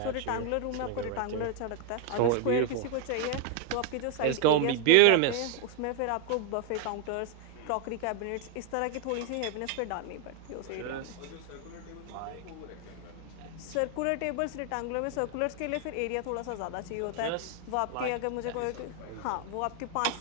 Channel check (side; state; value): both; different; correlation 0.00